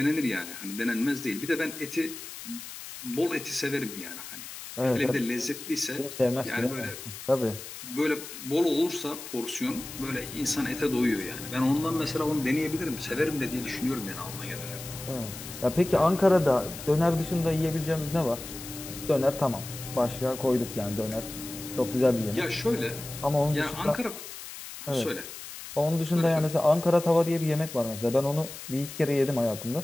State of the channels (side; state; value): left; noise; hiss, 12 dB below the sound